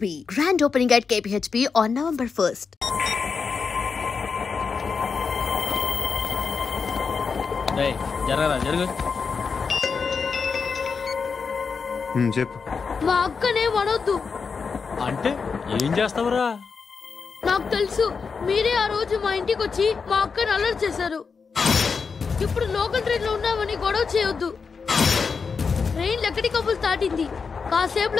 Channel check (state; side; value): quieter; right; 5.3 dB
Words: grand opening at KPHP on November 1st. Hey, జరుగు. చెప్పు. మా అక్కనే వడొద్దు. అంటే ఏం చేస్తావురా? నాకు తెలుసు, మీరే ఆ రోజు మా ఇంటికి వచ్చి మా అక్కని అల్లరి చేశారు. ఇప్పుడు లోకల్ ట్రైన్ లో ఉన్నామని గొడవ చేయొద్దు. ట్రైన్ లక్కడి కబుల్ దాటింది.